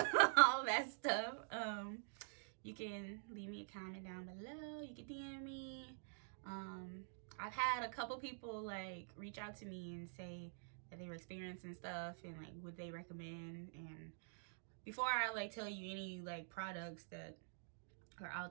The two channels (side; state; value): left; silent; digital silence